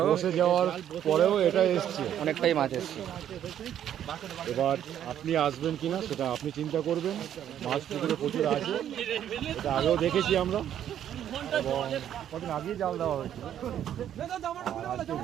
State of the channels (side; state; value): left; quieter; 10.4 dB